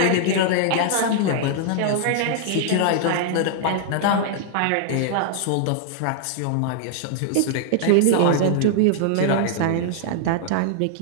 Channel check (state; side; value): different; both; correlation -0.01